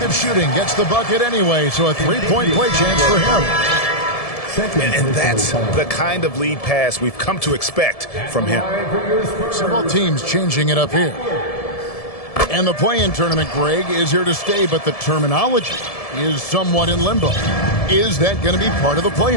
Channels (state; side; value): late; right; 1.7 ms